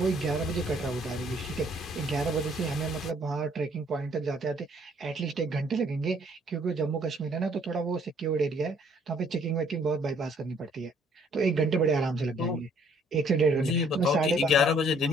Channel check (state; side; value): normal; both; correlation 0.62